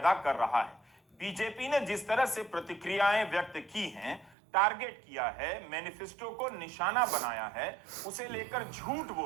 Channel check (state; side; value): drops out; left; at 4.4 s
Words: कर रहा है। बीजेपी ने जिस तरह से प्रतिक्रियाएं व्यक्त की हैं, टारगेट किया है, मैनिफेस्टो को निशाना बनाया है, उसे लेकर झूठ